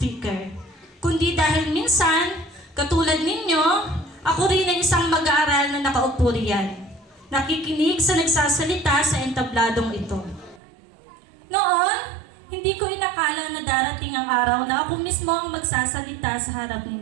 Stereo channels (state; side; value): drops out; left; at 10.6 s